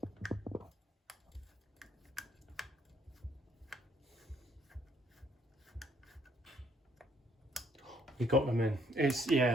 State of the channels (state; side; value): normal; both; correlation 0.67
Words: We got them in.